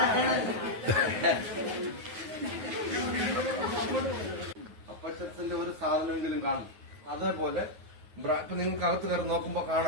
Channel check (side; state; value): left; late; 9.4 ms